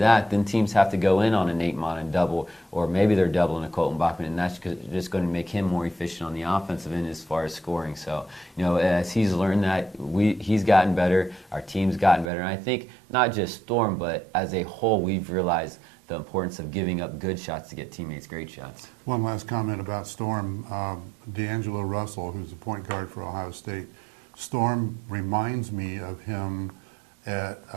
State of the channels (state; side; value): drops out; left; at 12.3 s